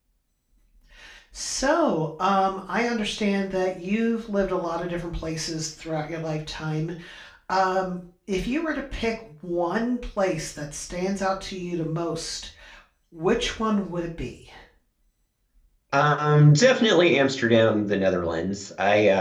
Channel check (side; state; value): both; identical; correlation 1.00